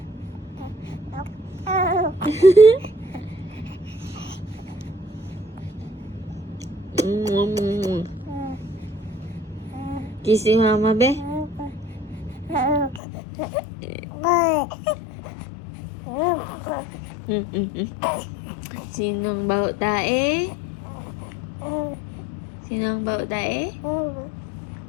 Kiss si mama, be. Sinong baho tae? Sinong baho tae?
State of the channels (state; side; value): drops out; right; at 13.0 s